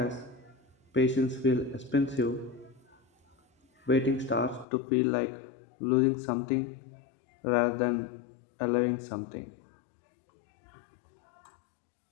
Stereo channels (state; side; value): drops out; right; at 4.7 s